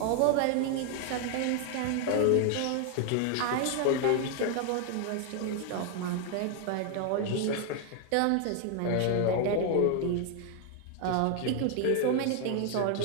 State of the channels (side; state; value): both; different; correlation 0.00